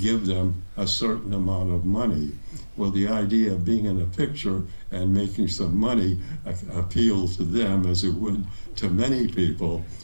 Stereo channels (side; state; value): both; inverted; correlation -1.00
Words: them a certain amount of money. Well, the idea of being in a picture and making some money appealed to them as it would to many people,